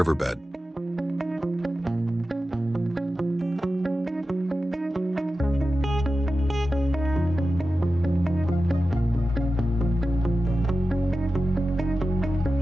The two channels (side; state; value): both; normal; correlation 0.93